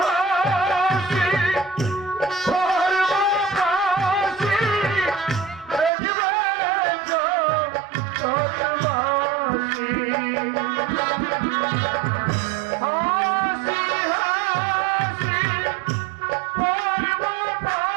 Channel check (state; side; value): drops out; left; at 5.9 s